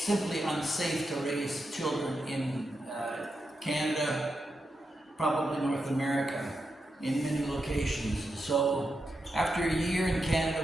unsafe to raise children in Canada, probably North America, in many locations. So after a year in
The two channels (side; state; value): both; normal; correlation 0.86